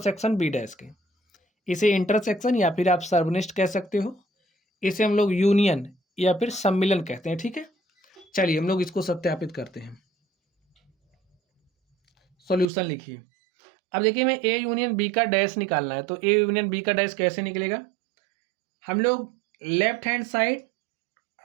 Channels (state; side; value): drops out; left; at 12.7 s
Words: b dash के। इसे इंटरसेक्शन या फिर आप सर्वनिष्ठ कह सकते हो। इसे हम लोग यूनियन या फिर सम्मिलन कहते हैं। ठीक है, चलिए हम लोग इसको सत्यापित करते हैं। सॉल्यूशन लिखिए। अब देखिए मैं ए यूनियन बी का डैश निकालना है, तो ए यूनियन बी का डैश कैसे निकलेगा। हम लोग left hand side